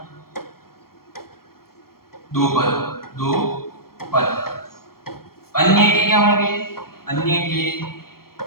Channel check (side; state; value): right; late; 0.93 ms